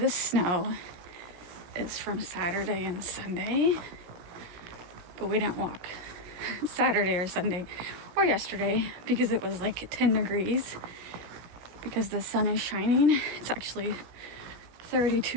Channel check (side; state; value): left; late; 17 ms